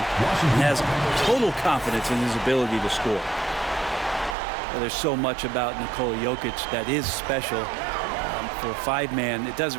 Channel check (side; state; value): left; drops out; at 4.4 s